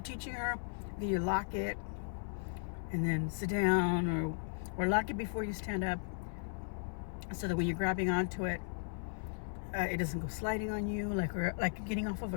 teaching her that you lock it and then sit down, or lock it before you stand up, so that when you're grabbing onto it, it doesn't go sliding on you, like getting off of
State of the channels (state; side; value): silent; right; 53 dB below the other